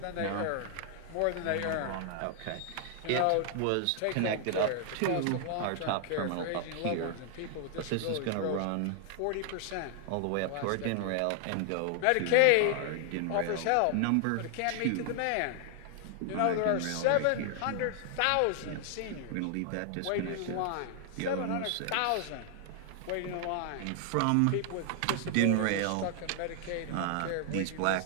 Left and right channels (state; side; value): different; both; correlation 0.00